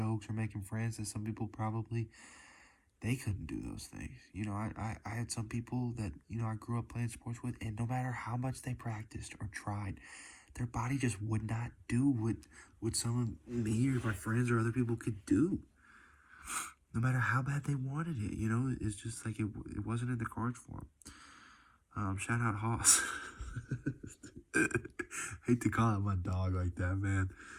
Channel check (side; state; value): both; identical; correlation 1.00